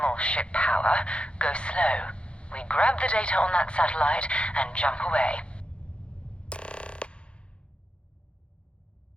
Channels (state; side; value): late; right; 0.058 ms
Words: ship power. Go slow. We grab the data on that satellite and jump away.